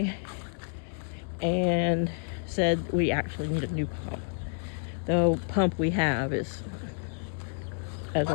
and said we actually need a new pump. The pump we have is as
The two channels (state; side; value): silent; right; digital silence